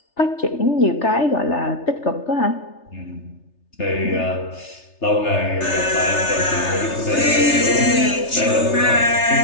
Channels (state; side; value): late; right; 3.3 ms